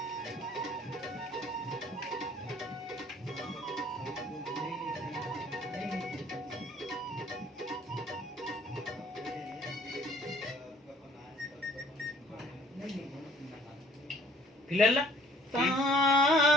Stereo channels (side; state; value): both; normal; correlation 0.56